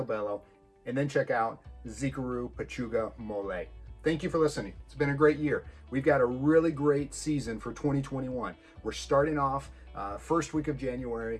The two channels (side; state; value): both; identical; correlation 1.00